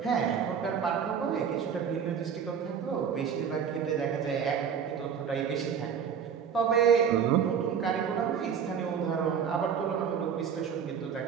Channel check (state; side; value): quieter; left; 7.4 dB